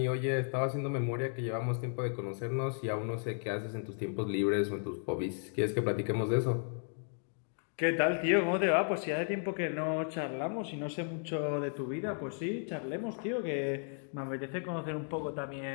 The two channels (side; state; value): right; silent; 55 dB below the other